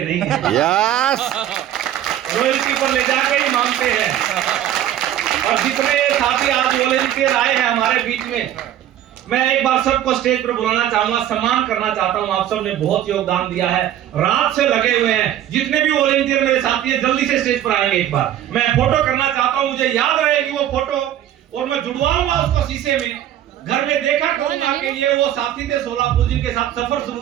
नहीं हैं। यस, रॉयल्टी पर ले जाके ही मांगते हैं। और जितने साथी आज वॉलंटियर आए हैं हमारे बीच में, मैं एक बार सबको स्टेज पर बुलाना चाहूंगा, सम्मान करना चाहता हूं। आप सब ने बहुत योगदान दिया है, रात से लगे हुए हैं। जितने भी वॉलंटियर मेरे साथी हैं जल्दी से स्टेज पर आएंगे। एक बार मैं फोटो करना चाहता हूं, मुझे याद रहेगी वो फोटो और मैं जुड़वाऊंगा उसको शीशे में। घर में देखा करूंगा कि ये वो साथी थे सोलापुर जिनके साथ सफर शुरू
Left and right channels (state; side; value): quieter; left; 11.7 dB